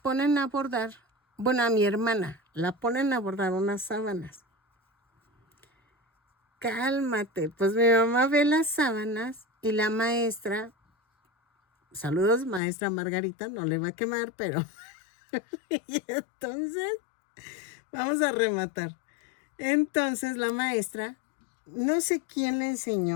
a bordar, bueno, a mi hermana, la ponen a bordar unas sábanas. Cálmate, pues mi mamá ve las sábanas y la maestra, saludos maestra Margarita, no le va a quemar, pero... y entonces, vamos a rematar. Entonces la maestra, no sé quién le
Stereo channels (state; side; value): drops out; right; at 12.6 s